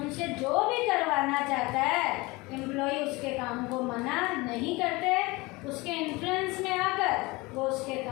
जो भी करवाना चाहता है एम्प्लॉय उसके काम को मना नहीं करते, उसके इन्फ्लुएंस में आकर वो उसके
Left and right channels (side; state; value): right; quieter; 23.4 dB